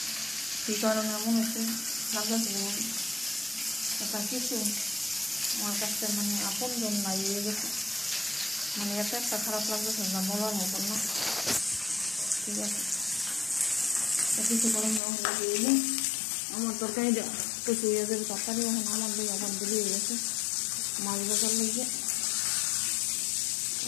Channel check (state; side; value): drops out; right; at 15.0 s